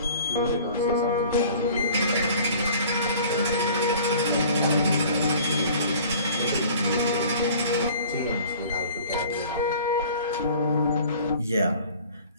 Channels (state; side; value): inverted; both; correlation -0.47